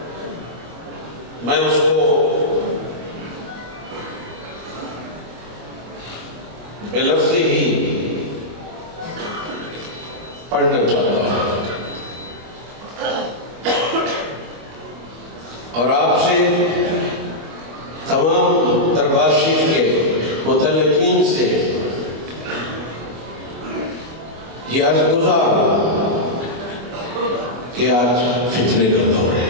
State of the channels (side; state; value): left; late; 25 ms